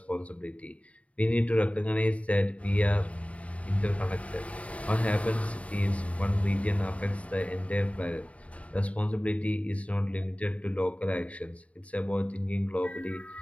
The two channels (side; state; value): right; late; 0.066 ms